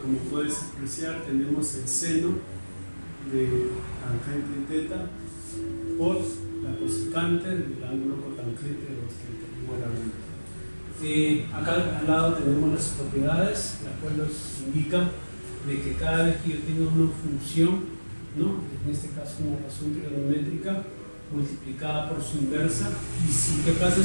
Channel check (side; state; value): both; inverted; correlation -1.00